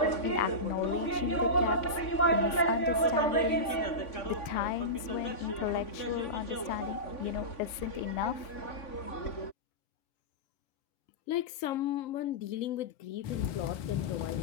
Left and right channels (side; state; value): right; late; 3.5 ms